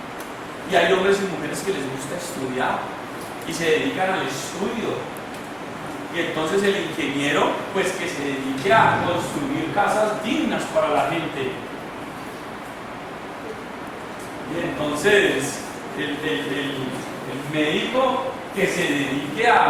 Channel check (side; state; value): both; identical; correlation 1.00